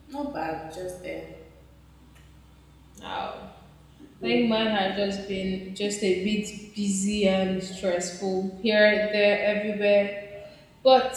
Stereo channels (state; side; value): identical; both; correlation 1.00